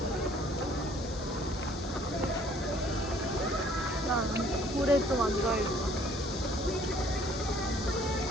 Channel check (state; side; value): normal; both; correlation 0.58